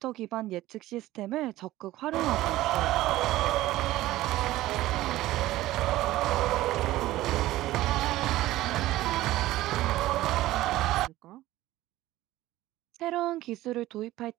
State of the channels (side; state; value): left; quieter; 16.1 dB